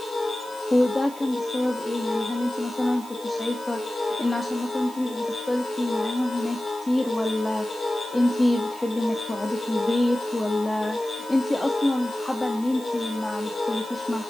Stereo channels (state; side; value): noise; right; hiss, 19 dB below the sound